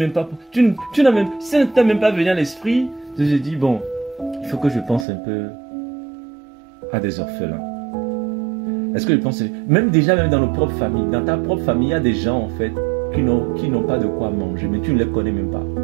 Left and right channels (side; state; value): left; drops out; at 5.1 s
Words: pas... ça ne t'a même pas venu à l'esprit de te dire, bon, il faut que je pense un peu à des orphelins. Est-ce que je pense... Même déjà, même dans nos propres familles, dans ta propre famille, il y a des gens, en fait, qui n'ont pas de quoi manger, mais tu ne les connais même pas.